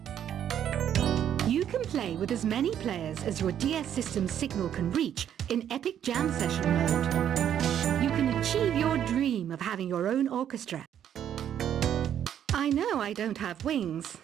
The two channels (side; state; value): left; quieter; 9.8 dB